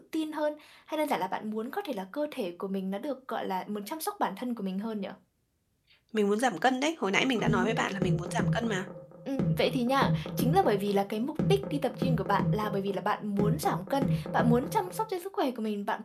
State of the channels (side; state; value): both; identical; correlation 1.00